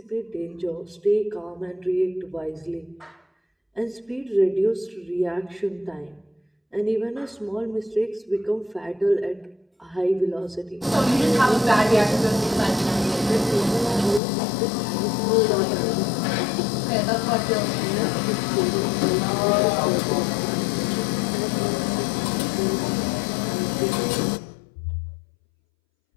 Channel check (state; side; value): drops out; right; at 14.2 s